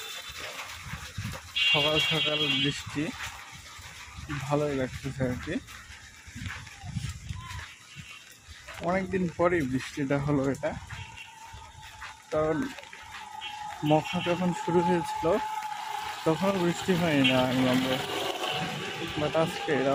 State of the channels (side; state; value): both; identical; correlation 1.00